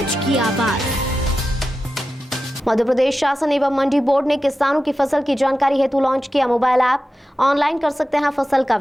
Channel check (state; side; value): normal; both; correlation 0.92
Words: की आवाज। मध्य प्रदेश शासन एवं मंडी बोर्ड ने किसानों की फसल की जानकारी हेतु लॉन्च किया मोबाइल ऐप। ऑनलाइन कर सकते हैं फसल का